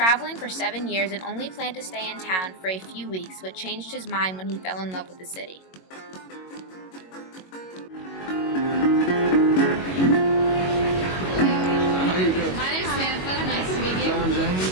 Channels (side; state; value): right; late; 22 ms